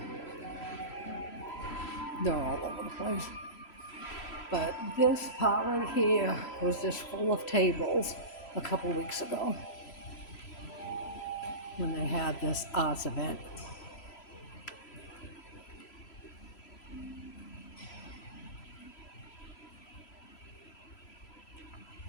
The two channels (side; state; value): right; late; 3.0 ms